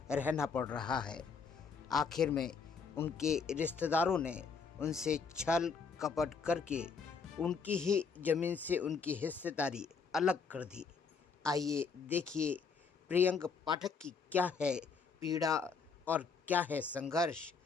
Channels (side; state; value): right; quieter; 5.3 dB